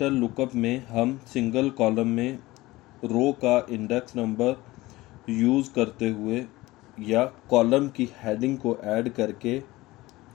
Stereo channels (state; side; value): quieter; right; 19.3 dB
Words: लुकअप में हम सिंगल कॉलम में रो का इंडेक्स नंबर यूज़ करते हुए या कॉलम की हेडिंग को ऐड करके